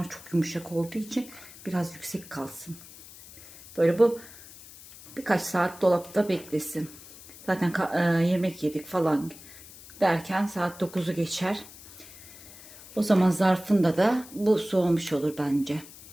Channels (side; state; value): left; noise; hiss, 18 dB below the sound